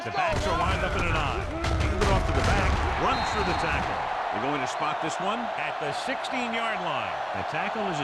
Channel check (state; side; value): identical; both; correlation 1.00